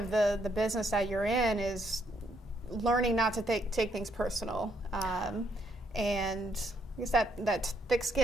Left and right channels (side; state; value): both; normal; correlation 0.73